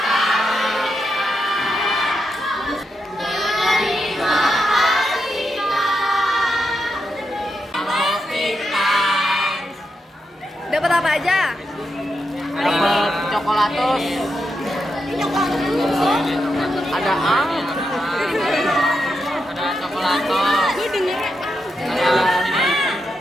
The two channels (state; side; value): normal; both; correlation 0.85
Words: Dapat apa aja? Dapat coklatos. Ada ang. Ada coklatos. Gue dengernya